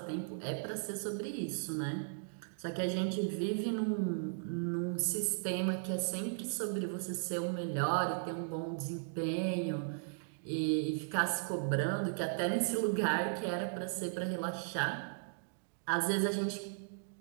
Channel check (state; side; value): silent; left; digital silence